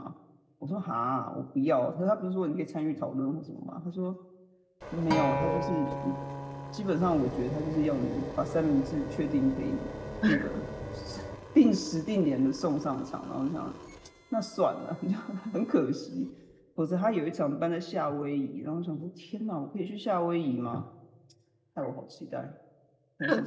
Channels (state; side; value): identical; both; correlation 1.00